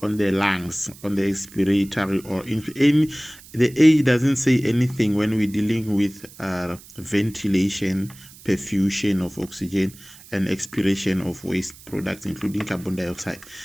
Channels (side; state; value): right; noise; hiss, 21 dB below the sound